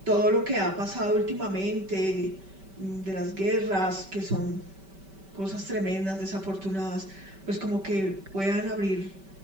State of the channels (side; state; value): left; late; 5.2 ms